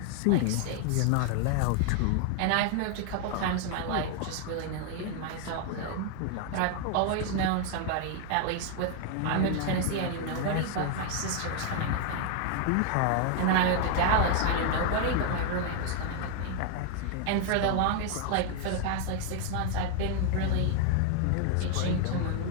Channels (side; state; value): both; different; correlation 0.00